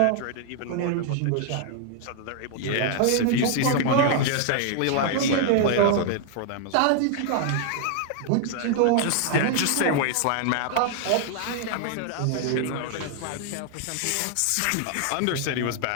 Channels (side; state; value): both; different; correlation 0.00